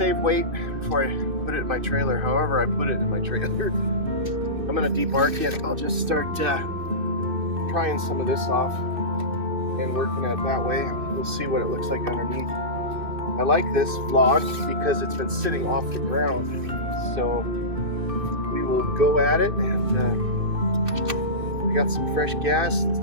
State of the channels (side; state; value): left; late; 2.5 ms